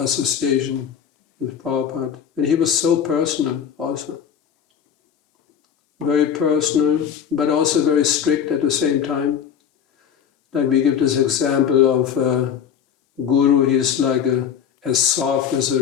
with Prabhupada. And he was so personal also. Very personal, but also very strict at the same time. Like we give this example of Guru, he is like as soft as a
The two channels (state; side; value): quieter; right; 8.3 dB